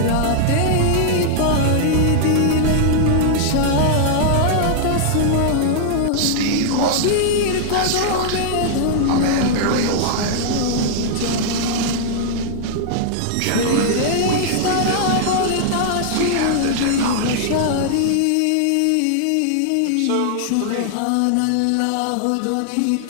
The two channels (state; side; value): different; both; correlation -0.01